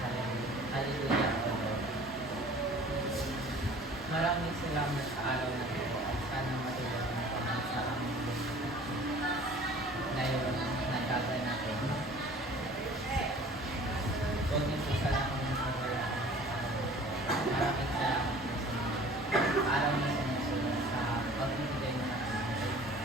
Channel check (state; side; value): normal; both; correlation 0.47